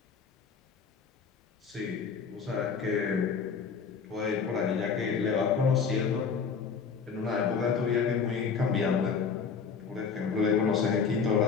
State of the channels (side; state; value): right; quieter; 5.8 dB